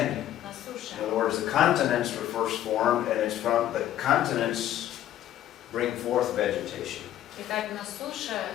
На суше. In other words, the continents were first formed, and it's from the continents bring forth vegetation. Итак, на суше,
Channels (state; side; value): quieter; right; 12.3 dB